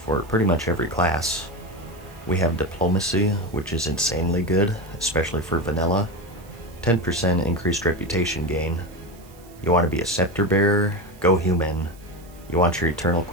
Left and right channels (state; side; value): noise; right; hiss, 26 dB below the sound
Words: pretty much every class. We have diplomacy, which is insanely good, especially for vanilla. 10% increased reputation gain. You want to be a scepter bearer? Go human. You want your eternal